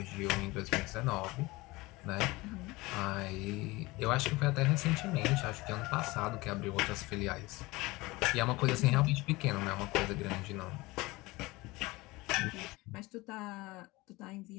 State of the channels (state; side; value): quieter; right; 21.7 dB